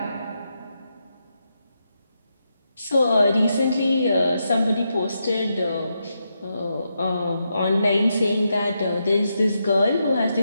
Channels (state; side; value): inverted; both; correlation -0.84